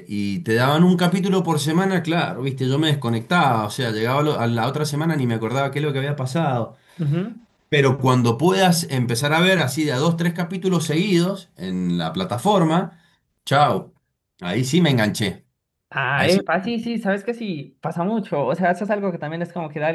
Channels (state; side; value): identical; both; correlation 1.00